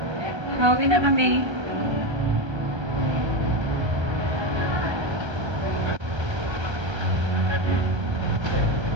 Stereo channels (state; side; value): late; left; 1.3 ms